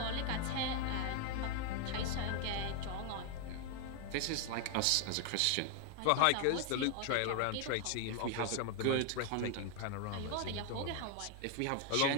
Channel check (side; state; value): both; different; correlation 0.01